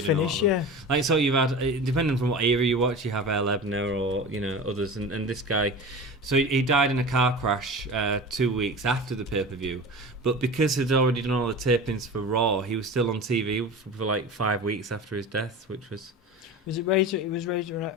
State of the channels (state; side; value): normal; both; correlation 0.32